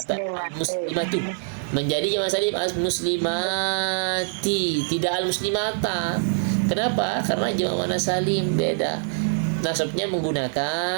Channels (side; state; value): left; silent; 62 dB below the other